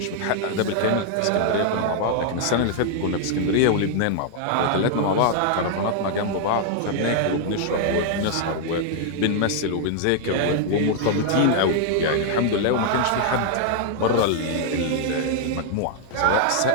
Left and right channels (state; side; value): different; both; correlation 0.00